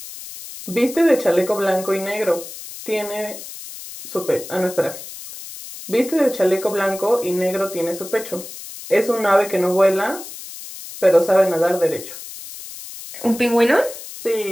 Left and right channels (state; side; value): noise; left; hiss, 13 dB below the sound